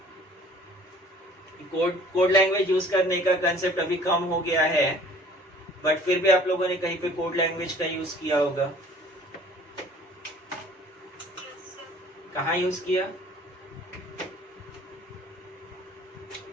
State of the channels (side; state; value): both; normal; correlation 0.52